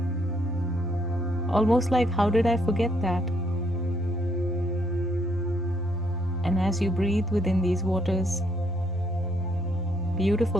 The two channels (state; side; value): normal; both; correlation 0.71